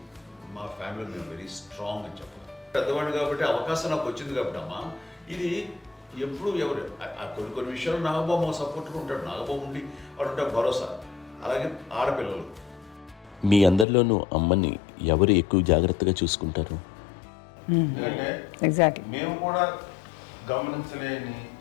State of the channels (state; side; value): drops out; right; at 13.9 s